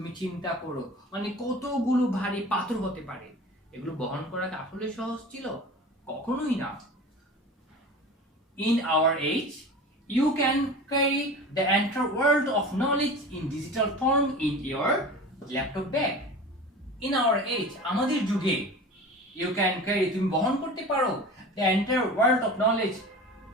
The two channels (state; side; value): normal; both; correlation 0.35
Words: চিন্তা করো, মানে কতগুলো ভারী পাথর হতে পারে। এগুলো বহন করা আসলে সহজ ছিল? কখনোই না। In our age, you can carry the entire world of knowledge in digital form in your laptop bag. In our age, আমাদের যুগে, you can carry, তুমি বহন করতে পারো the entire world of knowledge,